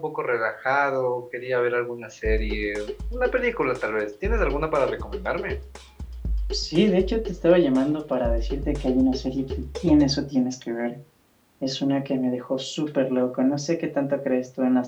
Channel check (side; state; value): both; identical; correlation 1.00